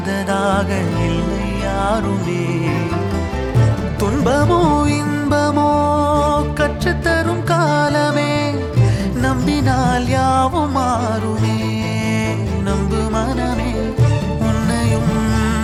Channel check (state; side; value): identical; both; correlation 1.00